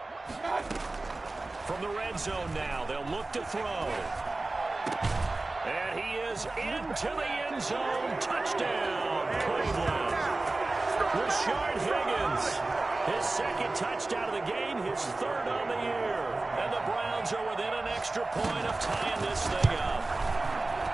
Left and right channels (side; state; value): left; quieter; 3.1 dB